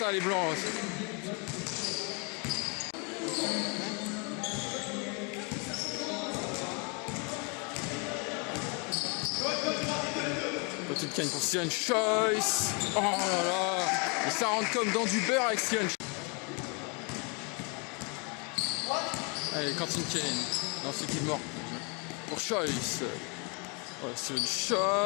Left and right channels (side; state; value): right; quieter; 33.6 dB